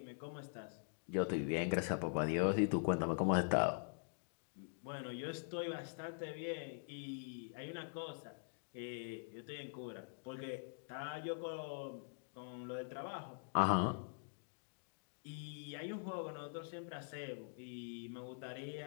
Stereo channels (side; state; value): right; silent; digital silence